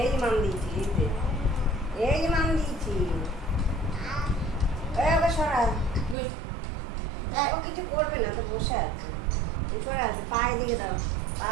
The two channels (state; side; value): drops out; left; at 6.2 s